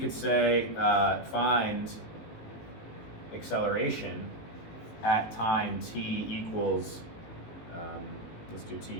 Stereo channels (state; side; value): late; right; 18 ms